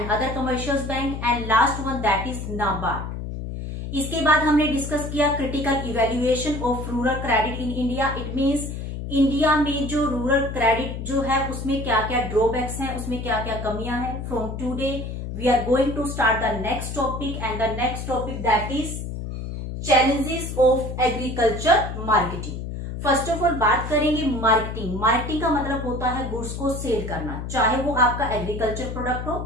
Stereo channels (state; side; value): noise; left; hum, 6 dB below the sound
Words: other commercial bank and last one that is NABARD. इसके बाद हमने डिस्कस किया critical evaluation of rural credit in India. It means India में जो rural credit जो है उसमें क्या क्या ड्रॉबैक्स हैं, उसमें क्या क्या कमियां हैं। From today we are going to start the next topic and the next topic that is challenges of agriculture marketing. First of all बात करेंगे मार्केटिंग। मार्केटिंग का मतलब होता है गुड्स को सेल करना, चाहे वो आपका एग्रीकल्चर प्रोडक्ट